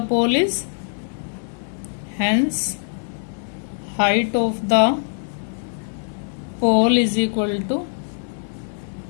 pole is, hence height of the pole is equal to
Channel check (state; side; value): silent; right; 64 dB below the other